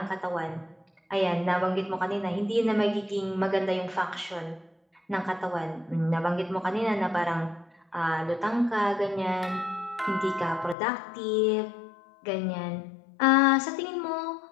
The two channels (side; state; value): right; drops out; at 10.8 s